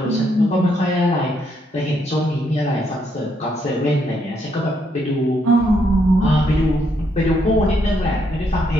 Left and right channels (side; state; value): both; normal; correlation 0.74